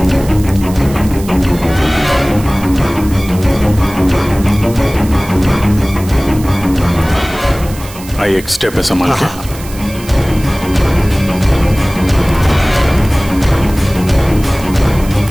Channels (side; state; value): right; noise; hiss, 17 dB below the sound